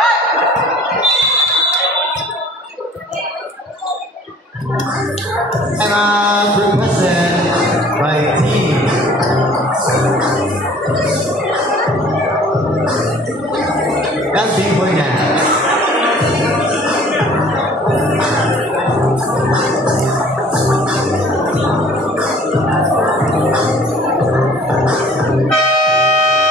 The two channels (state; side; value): normal; both; correlation 0.52